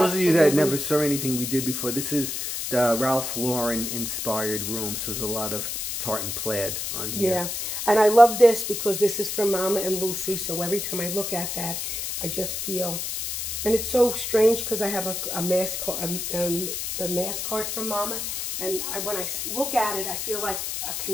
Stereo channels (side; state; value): left; noise; hiss, 4 dB below the sound